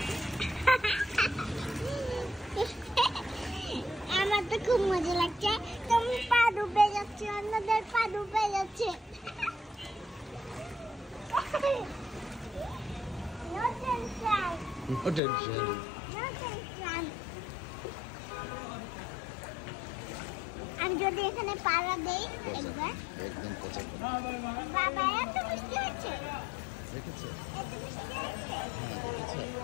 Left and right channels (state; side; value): drops out; right; at 15.2 s